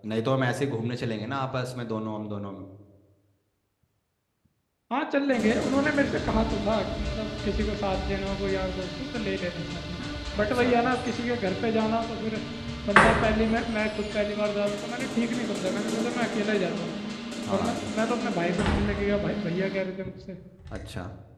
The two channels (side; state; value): both; identical; correlation 1.00